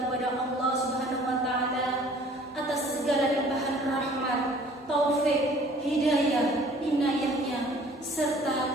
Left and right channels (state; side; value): normal; both; correlation 0.53